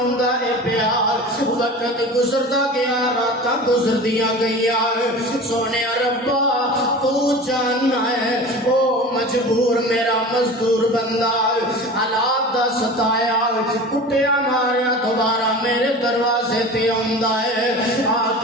اے پیا وقت گزردا گیا راتاں گزردیاں گئیاں سونے ربا تو جاننا ہے او مجبور میرا مزدور بندہ حالات دا ستایا کٹیا ماریا دوبارہ میرے دروازے تے آندا ہے آ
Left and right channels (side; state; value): both; normal; correlation 0.35